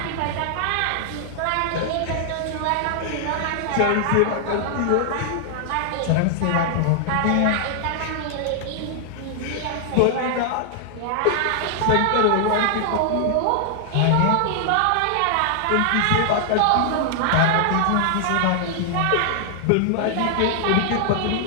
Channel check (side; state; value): both; different; correlation 0.00